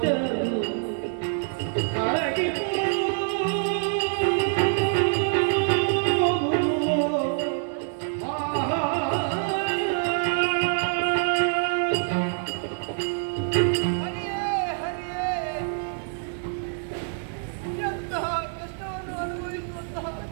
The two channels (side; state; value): left; silent; 61 dB below the other